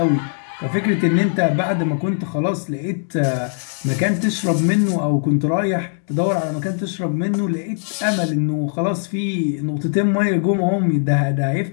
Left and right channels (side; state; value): right; silent; digital silence